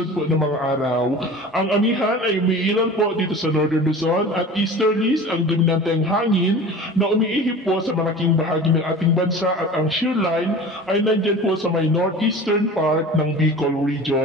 po ng mga araw. Ang amihan ay umiiral po dito sa Northern Luzon at easterlies ang dominanteng hangin na umiihip po sa malaking bahagi ng ating bansa at ang shear line ay nandyan po sa may northeastern part ng Bicol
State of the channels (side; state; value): both; normal; correlation 0.38